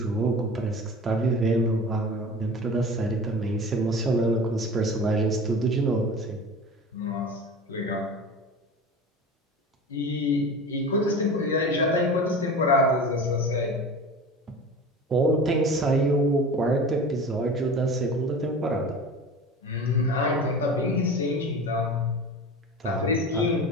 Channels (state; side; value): normal; both; correlation 0.35